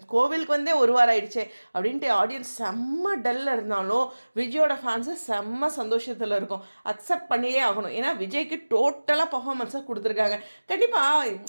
கோவிலுக்கு ஒரு வாரம் ஆயிடுச்சு அப்படின்ட்டு ஆடியன்ஸ் செம்ம டல்ல இருந்தாலும் விஜயோட ஃபேன்ஸு செம்ம சந்தோஷத்தில் இருக்கும். அக்செப்ட் பண்ணியே ஆகணும். ஏன்னா விஜய்க்கு டோட்டலாக பர்ஃபார்மன்ஸாக கொடுத்துருக்காங்க. கண்டிப்பாக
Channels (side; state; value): both; inverted; correlation -1.00